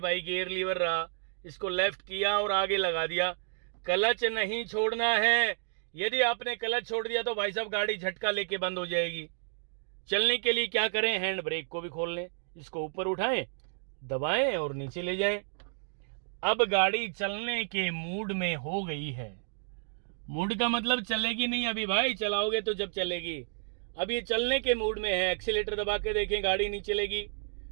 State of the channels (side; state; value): left; silent; digital silence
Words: गियर लीवर रहा, इसको लेफ्ट किया और आगे लगा दिया। क्लच नहीं छोड़ना है, यदि आपने क्लच छोड़ दिया तो भाई साहब गाड़ी झटका लेके बंद हो जाएगी। चलने के लिए क्या करें, हैंड ब्रेक को भी खोल लें, इसको ऊपर उठाएं, दबाएं और नीचे ले जाएं। अब गाड़ी चलने के मूड में हो गई है। मूड का मतलब चलेगी नहीं अभी भाई, चलाओगे तो जब चलेगी। अब ये चलने के मूड में है, एक्सीलेटर दबा के देखें, गाड़ी नहीं चलेगी।